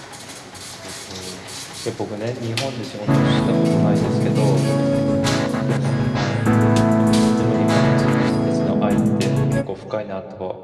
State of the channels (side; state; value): both; identical; correlation 1.00